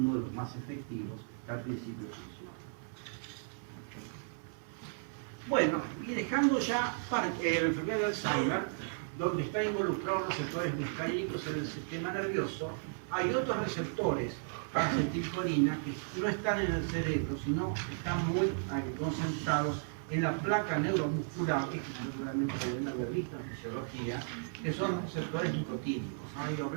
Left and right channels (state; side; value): silent; left; digital silence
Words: de los más efectivos que al principio funciona. Bueno, y dejando ya la enfermedad de Alzheimer, donde están involucrados los receptores muscarínicos en el sistema nervioso, hay otros receptores para acetilcolina que no están en el cerebro, sino están muy concentrados en la placa neuromuscular, que seguramente deben haber visto en fisiología, que son receptores nicotínicos. ¿Han oído